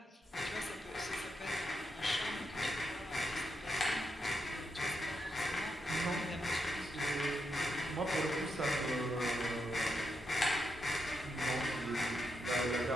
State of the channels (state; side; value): normal; both; correlation 0.83